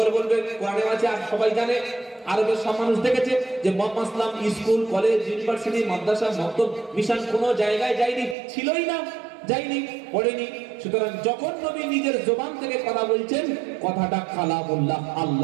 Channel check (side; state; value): left; drops out; at 8.3 s